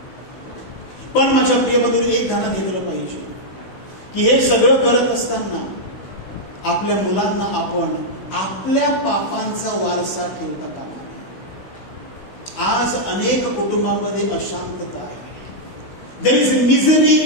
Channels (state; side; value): late; right; 16 ms